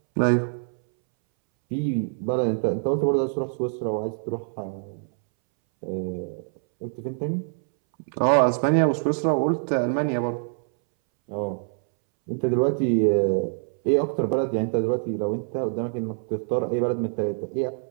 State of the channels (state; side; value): silent; left; 62 dB below the other